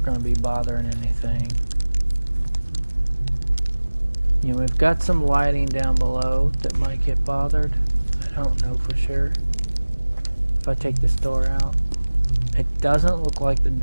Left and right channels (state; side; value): inverted; both; correlation -1.00